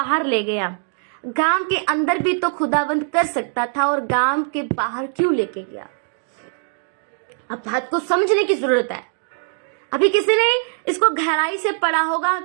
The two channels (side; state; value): left; silent; 65 dB below the other